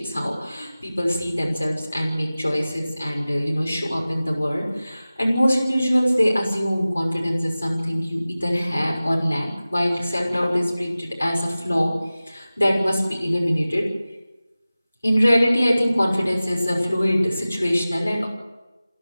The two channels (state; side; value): inverted; both; correlation -0.97